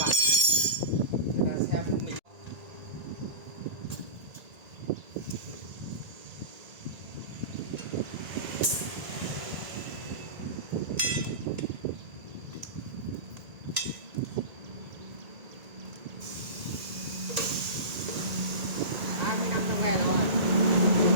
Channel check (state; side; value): late; left; 1.9 ms